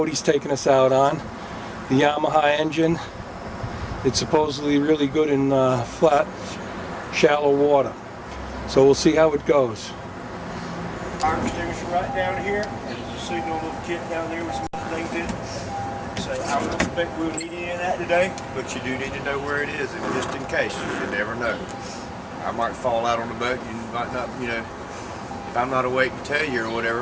he's taking us out on. The Yamaha engine. It's supposedly really good in flat, shallow water. So we'll see how it goes. Fire extinguisher right down here. There's a signal little kit down there with some things in it. So I don't expect we'll need any of that today, but you do need to know where it is, and just in case, you never know. I might fall out on the boat, you might not, if I'm not awake to tell you or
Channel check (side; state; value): both; identical; correlation 1.00